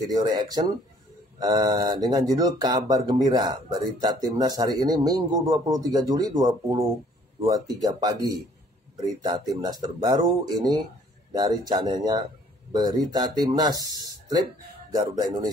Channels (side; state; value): both; normal; correlation 0.59